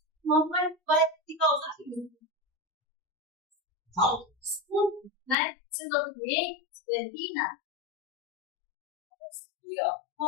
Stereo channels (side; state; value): right; drops out; at 5.4 s